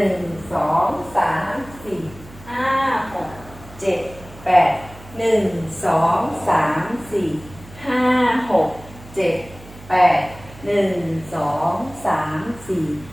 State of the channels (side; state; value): right; noise; hum, 19 dB below the sound